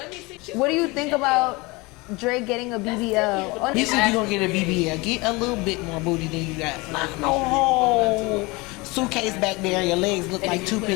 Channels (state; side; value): quieter; right; 24.6 dB